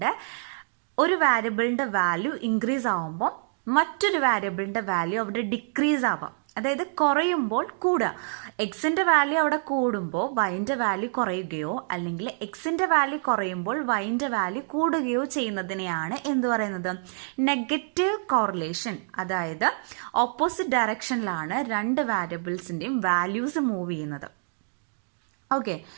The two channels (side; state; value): left; silent; digital silence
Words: വാരിയബിളിൻ്റെ വാല്യൂ ഇൻക്രീസ് ആവുമ്പോൾ മറ്റൊരു വാരിയബിളിൻ്റെ വാല്യൂ അവിടെ ഡിക്രീസ് ആവാം. അതായത് കുറയുമ്പോൾ കൂടുക. എക്സിൻ്റെ വാല്യൂ അവിടെ കൂടുമ്പോൾ വൈൻ്റെ വാല്യൂ കുറയുകയോ അല്ലെങ്കിൽ എക്സിൻ്റെ വാല്യൂ കുറയുമ്പോൾ വൈൻ്റെ വാല്യൂ കൂടുകയോ ചെയ്യുന്നതിനെയാണ് എന്ത് പറയുന്നത്? Negative correlation. അതായത് ഓപ്പോസിറ്റ് ഡയറക്ഷനിലാണ് രണ്ട് വാരിയബിൾസിൻ്റെയും വാല്യൂസ് മൂവ് ചെയ്യുന്നത്. ഓക്കെ,